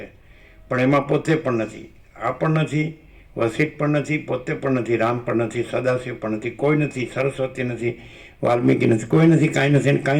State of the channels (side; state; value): both; identical; correlation 1.00